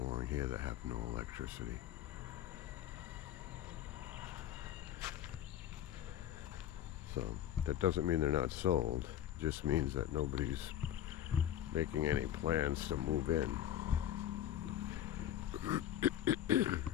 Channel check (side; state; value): right; quieter; 11.1 dB